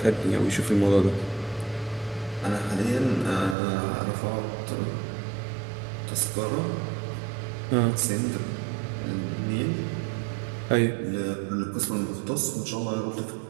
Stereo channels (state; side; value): drops out; left; at 3.6 s